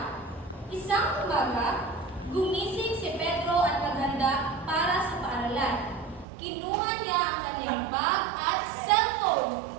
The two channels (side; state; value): left; drops out; at 6.2 s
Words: Isang umaga, gumising si Pedro at naghanda para sa paaralan. Kinuha niya ang kanyang bag at cellphone.